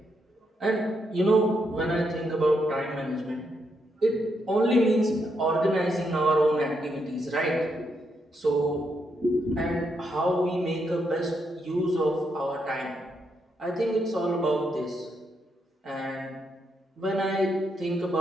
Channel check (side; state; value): both; normal; correlation 0.79